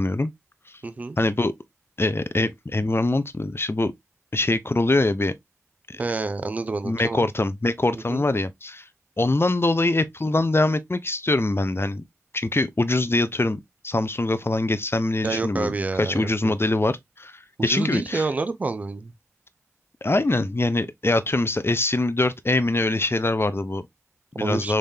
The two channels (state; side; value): normal; both; correlation 0.76